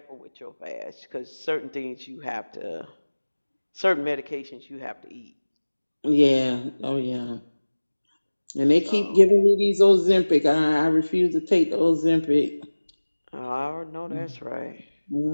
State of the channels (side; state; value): both; inverted; correlation -1.00